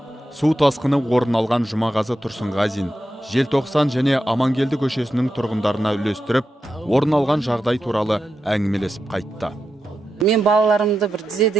су тасқыны орын алған Жұмағазы Тұрсынғазин, Желтоқсан және Амангелді көшесінің тұрғындарына үлестіріп, орын алған жағдай туралы әңгімелесіп қайтты. Мен балаларымды бір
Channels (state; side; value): normal; both; correlation 0.88